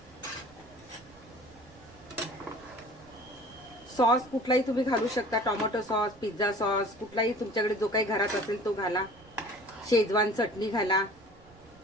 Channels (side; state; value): right; noise; rumble, 25 dB below the sound